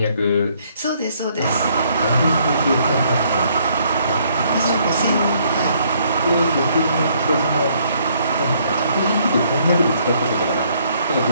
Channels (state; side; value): inverted; both; correlation -0.67